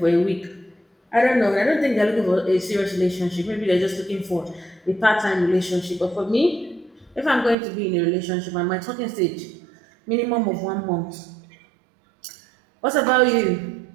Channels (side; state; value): left; drops out; at 7.6 s